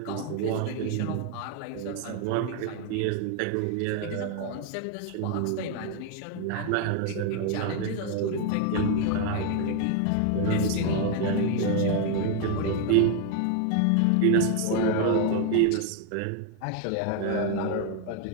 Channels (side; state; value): both; different; correlation 0.01